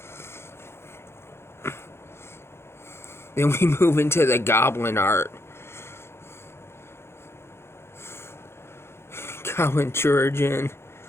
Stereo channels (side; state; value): right; late; 0.12 ms